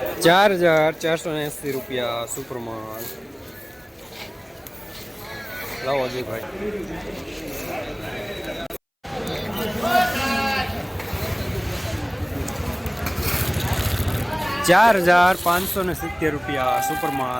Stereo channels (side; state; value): both; identical; correlation 1.00